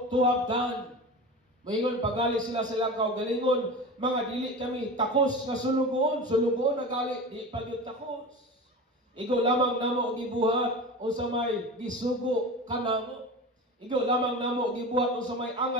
to have done. Moingon pagali sila sa ilang kaugalingon, mga dili kami takos nga sulugoon. Sulugoon na gali, di pagyud takos. Igo lamang namo gibuhat unsa may gisugo kanamo. Igo lamang namo gibuhat unsa may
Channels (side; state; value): both; normal; correlation 0.31